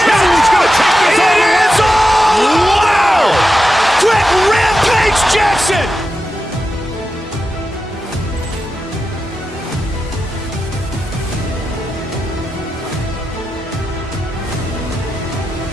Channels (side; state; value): both; normal; correlation 0.90